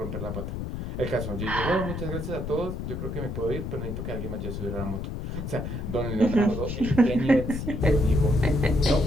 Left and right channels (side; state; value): left; noise; rumble, 5 dB below the sound